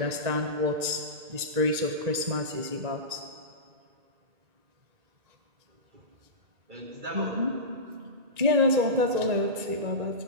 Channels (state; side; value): late; left; 1.9 ms